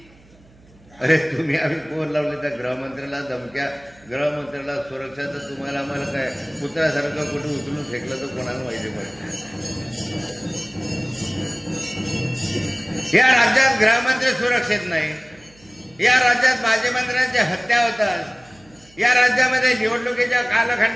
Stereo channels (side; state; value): right; noise; hum, 27 dB below the sound